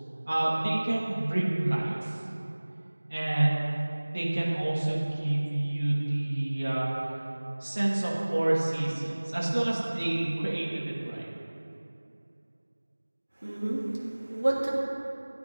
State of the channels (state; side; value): inverted; both; correlation -1.00